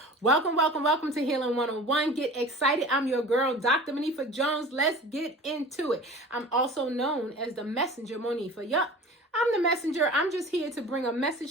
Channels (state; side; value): normal; both; correlation 0.40